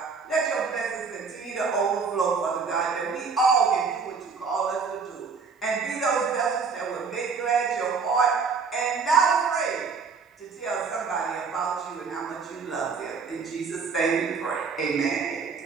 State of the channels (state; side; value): quieter; left; 5.3 dB